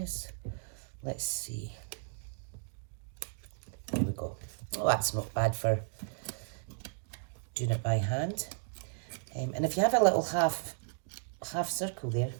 Let's see. There we go. Oh, that's not bad for doing it by hand. And if you have a little half circle there,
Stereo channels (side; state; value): left; silent; digital silence